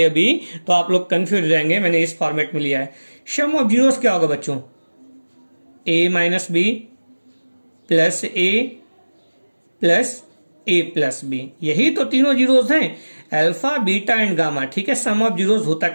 बी तो आप लोग कंफ्यूज हो जाएंगे, मैंने इस फॉर्मेट में लिया है। सम ऑफ जीरोस क्या होगा बच्चों, ए माइनस बी प्लस ए प्लस ए प्लस बी, यही तो तीनों जीरोस हैं, अल्फा बीटा एंड गामा। ठीक है, सम ऑफ जीरोस होता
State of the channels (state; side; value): inverted; both; correlation -1.00